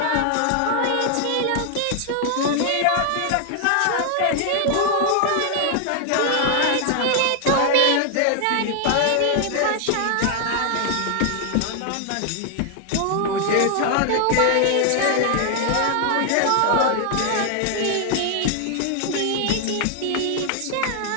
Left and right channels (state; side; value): different; both; correlation 0.00